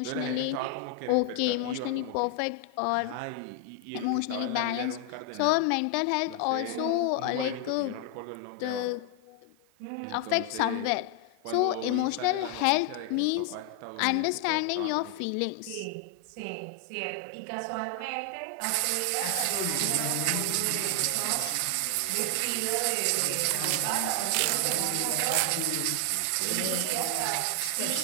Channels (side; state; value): both; different; correlation 0.00